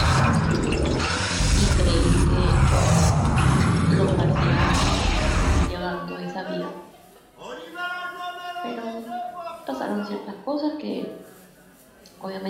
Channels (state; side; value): identical; both; correlation 1.00